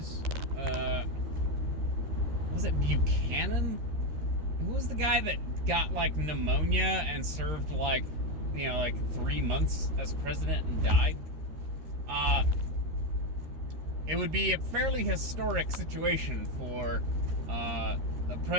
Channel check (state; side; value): late; left; 13 ms